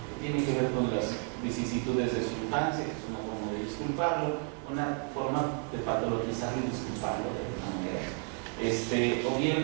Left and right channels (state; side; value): quieter; left; 38.4 dB